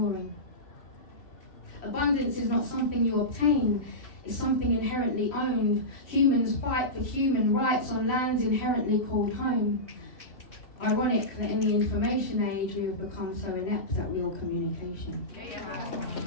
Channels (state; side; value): late; right; 3.0 ms